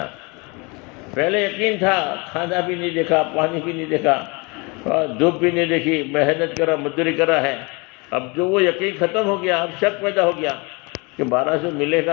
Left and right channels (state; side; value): quieter; right; 28.7 dB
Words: پہلے یقین تھا، کھانا بھی نہیں دیکھا، پانی بھی نہیں دیکھا، دھوپ بھی نہیں دیکھی، محنت کرا، مزدوری کرا ہے، اب جو وہ یقین ختم ہو گیا، اب شک پیدا ہو گیا کہ 1200 ملے